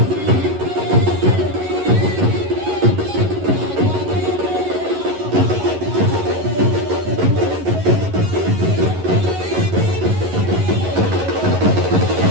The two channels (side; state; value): left; late; 11 ms